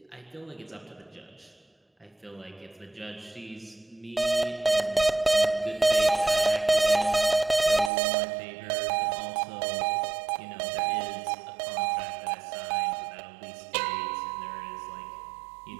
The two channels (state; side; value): drops out; left; at 7.9 s